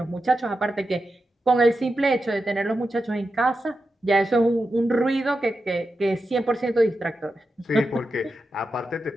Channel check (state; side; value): normal; both; correlation 0.89